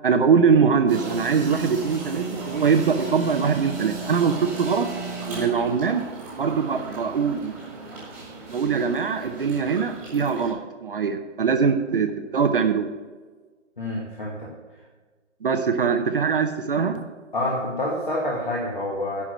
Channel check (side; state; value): left; quieter; 5.0 dB